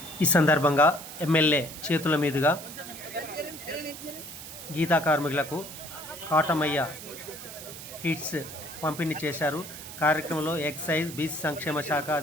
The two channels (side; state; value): right; noise; hiss, 12 dB below the sound